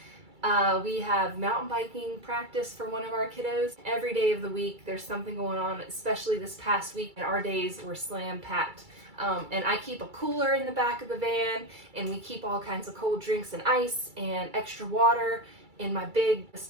we have mountain biking practice for one of our kiddos. Every day of the week there's something going on, especially this past week, and our days were slam packed. And I keep a cooler in the back of the van, and we keep all kinds of cold drinks and ice and extra water in my big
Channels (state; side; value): late; left; 2.3 ms